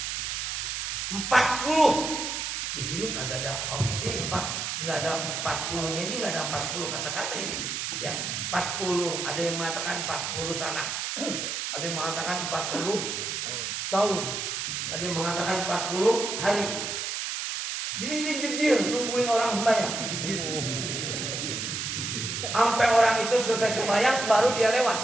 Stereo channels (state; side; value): noise; right; hiss, 3 dB below the sound